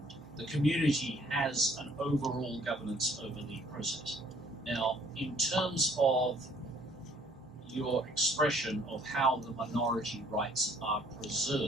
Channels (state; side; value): normal; both; correlation 0.60